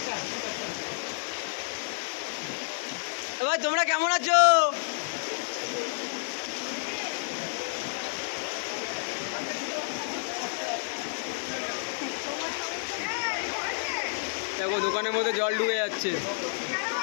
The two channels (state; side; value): silent; right; digital silence